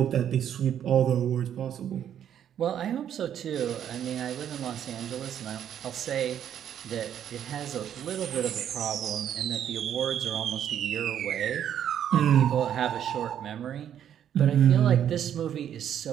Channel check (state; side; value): quieter; left; 9.7 dB